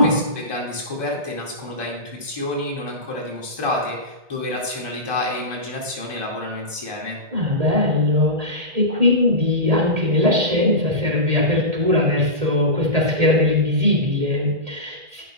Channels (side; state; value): left; late; 1.2 ms